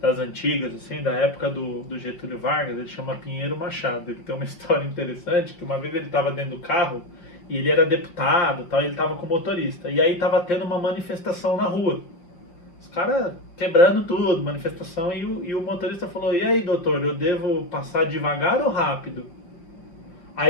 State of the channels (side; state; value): right; late; 5.8 ms